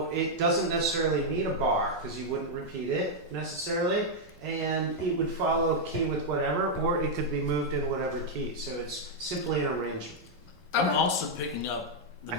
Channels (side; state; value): both; normal; correlation -0.02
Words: it doesn't necessarily need a bar because you wouldn't repeat it necessarily. And it would follow key with whatever, or it could be moved in whatever key. So it's simply an arrangement. I'm Okay. also picking up the I